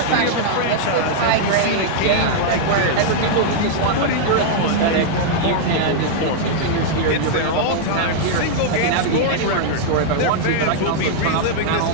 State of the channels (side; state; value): both; different; correlation -0.01